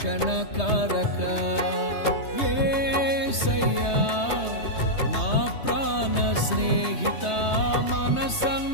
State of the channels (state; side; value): late; right; 3.2 ms